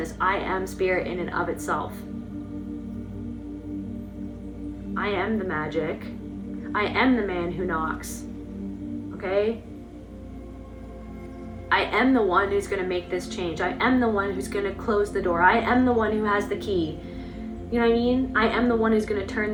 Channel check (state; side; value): identical; both; correlation 1.00